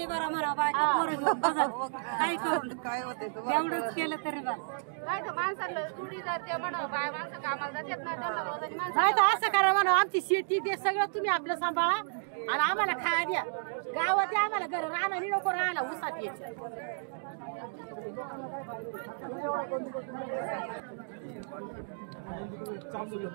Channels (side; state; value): left; silent; digital silence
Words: भरा म्हणा बायका पोरं घेऊन बघा काय करून तेवढंच केलं तरी बस. नाही तर असं करा म्हणा आमची शेती ते सगळं तुम्ही आपलं सांभाळा आणि आम्हाला खाया द्या. गावात आम्हाला घर राहणार नको राहायला उसात यायचं.